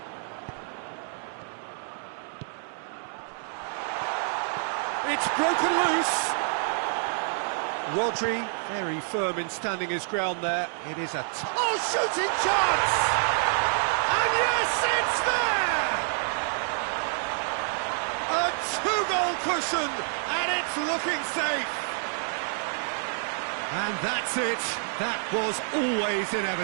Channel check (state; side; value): silent; left; 59 dB below the other